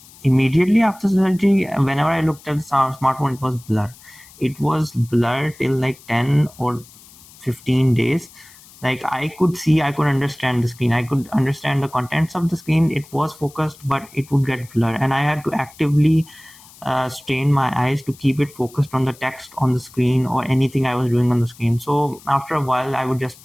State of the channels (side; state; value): left; noise; hiss, 23 dB below the sound